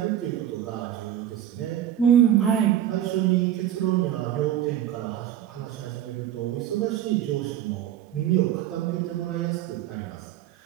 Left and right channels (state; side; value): quieter; left; 11.2 dB